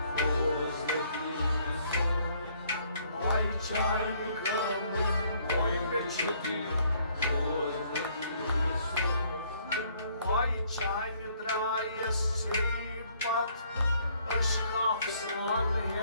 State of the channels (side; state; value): both; inverted; correlation -0.65